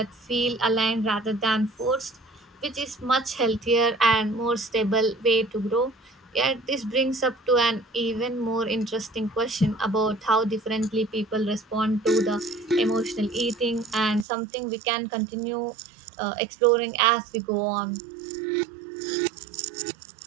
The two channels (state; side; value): drops out; left; at 14.2 s